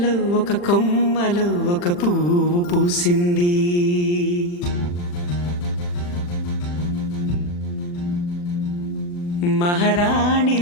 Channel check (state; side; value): late; right; 40 ms